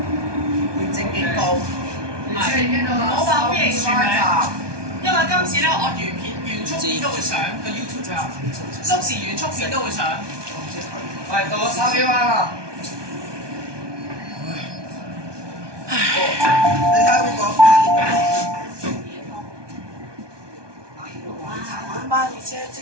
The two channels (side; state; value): left; late; 1.2 ms